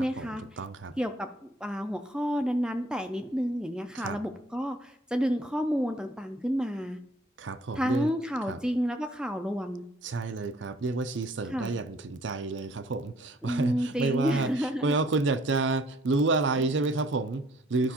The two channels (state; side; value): normal; both; correlation 0.60